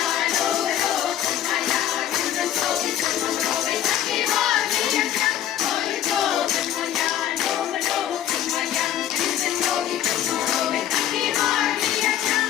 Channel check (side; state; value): right; quieter; 11.2 dB